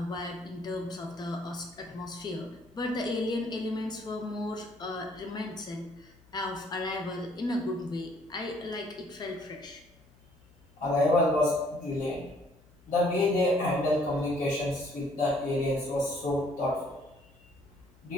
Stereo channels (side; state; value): left; noise; hum, 28 dB below the sound